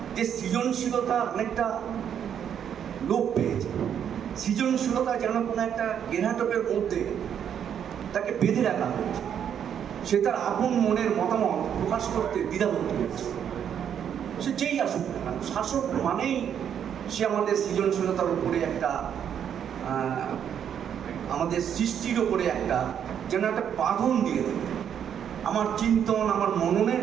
যে সৃজনশীলতা অনেকটা লোপ পেয়েছে। সৃজনশীলতা যেন কোনো একটা গেরাটকের মধ্যে তাকে বেঁধে রাখা হয়েছে, সে তার আপন মনের মতামত প্রকাশ করতে দ্বিধাবোধ করেছে। সে যেই আসুক না কেন, শাসক মানেই সে আমাদের সৃজনশীলতার উপরে একটা আমাদের সৃষ্টির ওপরে একটা যেন একটা বাঁধন দিয়ে দেবে। আমার চিন্তন, আমার মননের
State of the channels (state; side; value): quieter; left; 8.7 dB